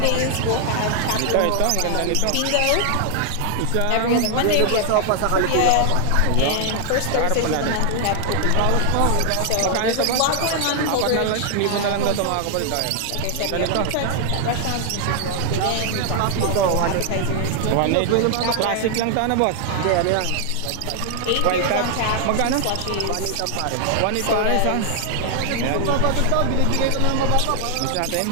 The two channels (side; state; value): both; different; correlation 0.00